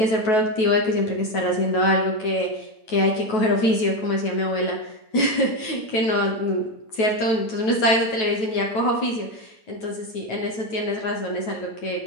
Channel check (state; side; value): late; right; 9.2 ms